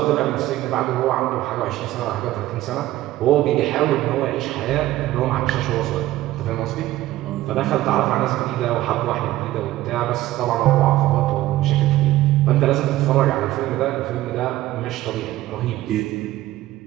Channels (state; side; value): quieter; left; 15.6 dB